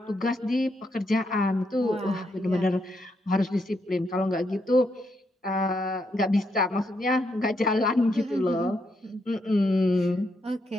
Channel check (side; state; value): both; normal; correlation 0.78